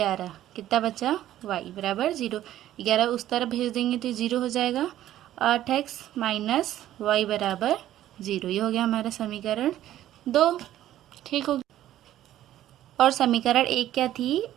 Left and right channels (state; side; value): quieter; left; 12.9 dB